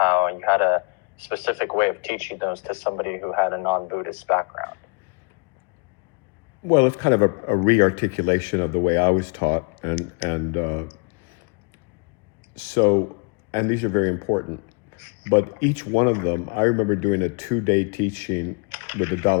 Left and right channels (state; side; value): quieter; right; 36.0 dB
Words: you had a specific way of teaching those to somebody who had a non-Buddhist background. Well, it's kind of a re-articulation of the way I was taught, and these are very important. But each one of them, I remember doing a 2-day teaching with the